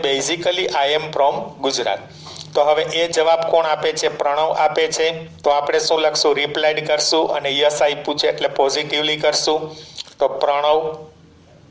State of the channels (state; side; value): identical; both; correlation 1.00